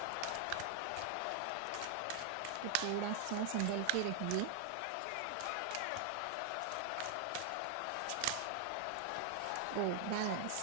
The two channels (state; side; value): different; both; correlation 0.00